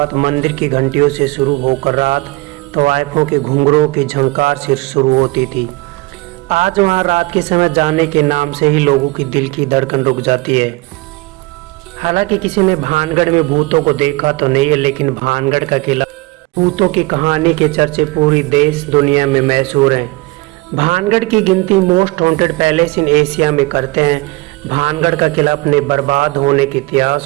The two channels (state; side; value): quieter; left; 23.5 dB